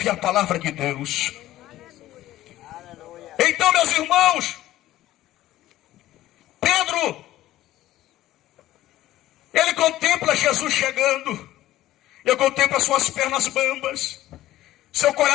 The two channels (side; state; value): right; quieter; 14.8 dB